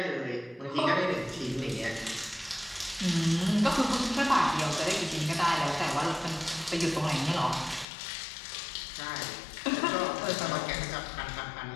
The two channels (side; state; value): right; drops out; at 7.9 s